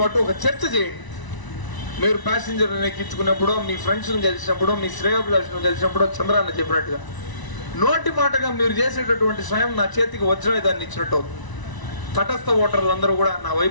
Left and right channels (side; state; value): right; late; 1.0 ms